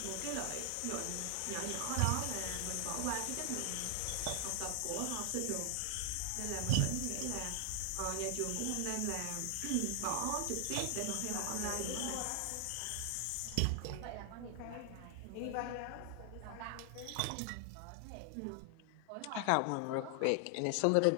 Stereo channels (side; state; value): both; different; correlation 0.00